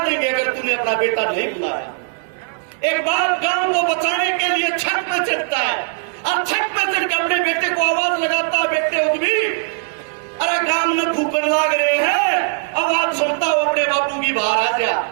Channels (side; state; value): left; silent; 62 dB below the other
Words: अगर तूने अपना बेटा नहीं बुलाया। एक बाप गांव को बचाने के लिए छत में चढ़ता है, और छत में चढ़ के अपने बेटे को आवाज लगाता है, बेटे उद्यमी, अरे गांव में फूकन लाग रहे हैं, आवाज सुनता हो अपने बापू की, बाहर आ जा।